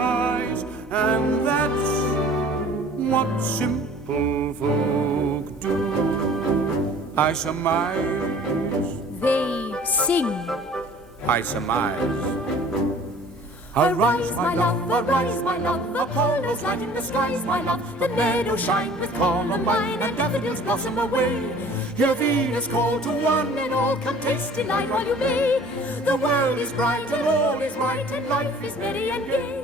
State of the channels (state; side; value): normal; both; correlation 0.49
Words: And that's what simple folk do. I surmise. They sing. I surmise. Arise, my love, Apollo's light in the skies, my love. The meadows shine with columbine, and daffodils blossom away. Hear Venus call to one, and all come taste delight while you may. The world is bright, and all is right, and life is merry and